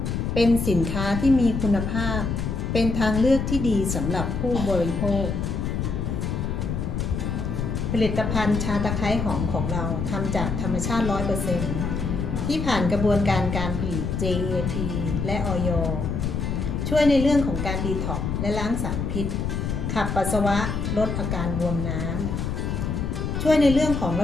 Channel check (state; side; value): noise; left; rumble, 2 dB below the sound